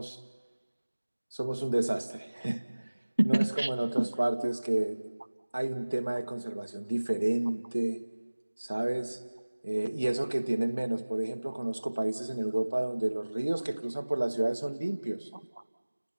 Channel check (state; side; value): inverted; both; correlation -1.00